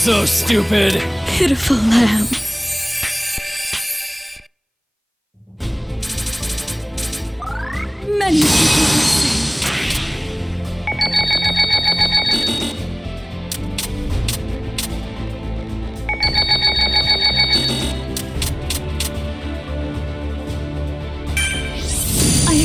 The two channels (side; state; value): both; identical; correlation 1.00